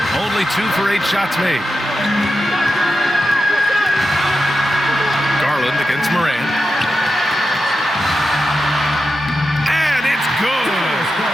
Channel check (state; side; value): normal; both; correlation 0.90